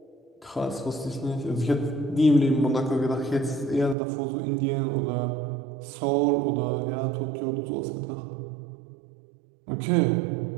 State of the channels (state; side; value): drops out; left; at 4.0 s